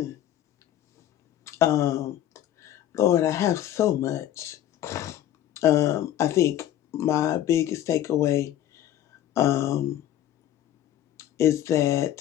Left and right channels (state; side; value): quieter; right; 11.9 dB